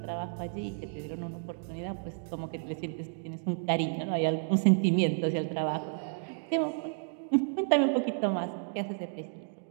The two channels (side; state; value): left; silent; digital silence